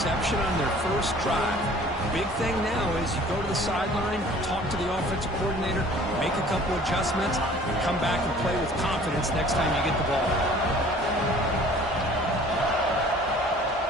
on their first drive. Big thing now is you go to the sideline, talk to the offensive coordinator, make a couple adjustments, and come back and play with confidence next time you get the ball.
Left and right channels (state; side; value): normal; both; correlation 0.50